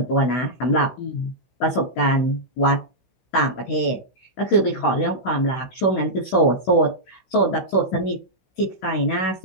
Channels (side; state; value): right; late; 16 ms